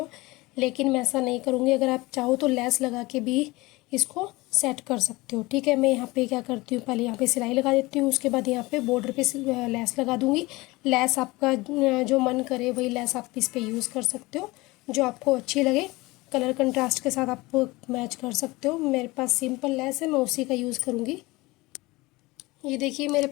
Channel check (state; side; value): quieter; right; 21.8 dB